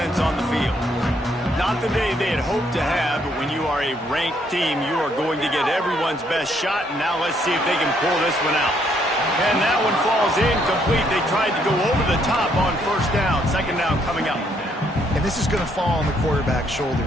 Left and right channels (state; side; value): normal; both; correlation 0.70